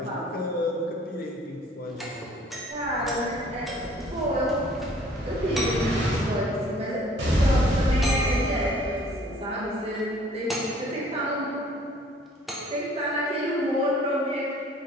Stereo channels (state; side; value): normal; both; correlation 0.55